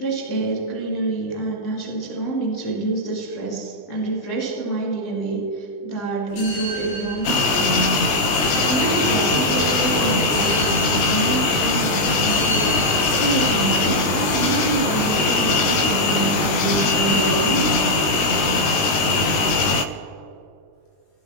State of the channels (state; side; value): late; right; 20 ms